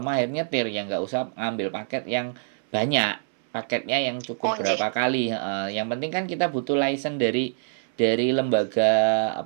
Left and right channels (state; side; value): silent; left; 62 dB below the other